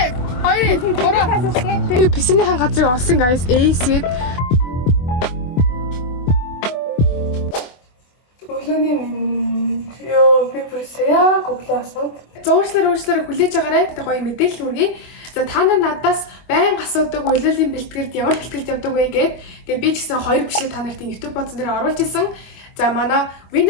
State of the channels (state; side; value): late; right; 24 ms